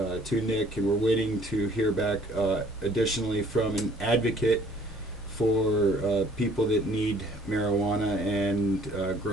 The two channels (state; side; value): normal; both; correlation 0.57